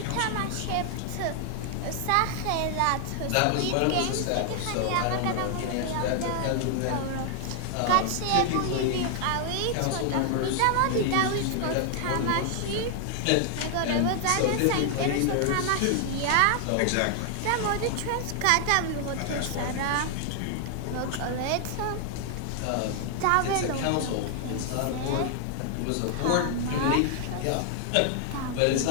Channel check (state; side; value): different; both; correlation 0.00